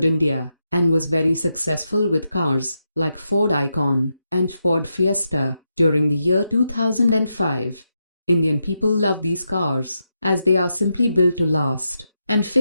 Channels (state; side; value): inverted; both; correlation -0.85